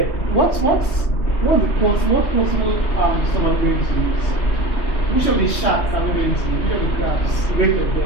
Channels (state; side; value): late; right; 3.1 ms